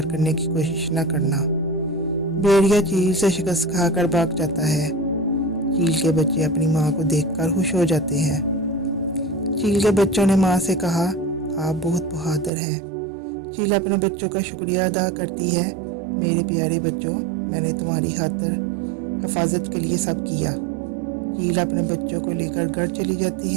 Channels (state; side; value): drops out; left; at 12.5 s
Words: کرنے کی کوشش نہ کرنا۔ بھیڑیا چیل سے شکست کھا کر بھاگ جاتا ہے۔ چیل کے بچے اپنی ماں کو دیکھ کر خوش ہو جاتے ہیں۔ چیل کے بچوں نے ماں سے کہا، آپ بہت بہادر ہیں۔ چیل اپنے بچوں کا شکریہ ادا کرتی ہے، میرے پیارے بچوں، میں نے تمہاری خاطر حفاظت کے لیے سب کیا۔ چیل اپنے بچوں کو لے کر گھر چلی